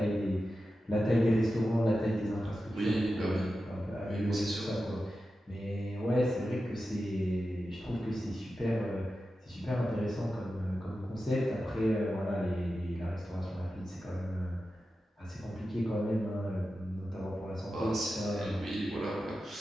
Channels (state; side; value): normal; both; correlation 0.92